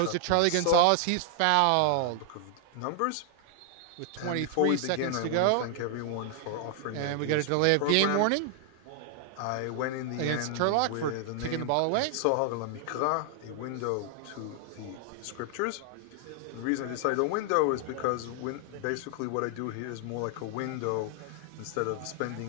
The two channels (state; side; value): different; both; correlation 0.00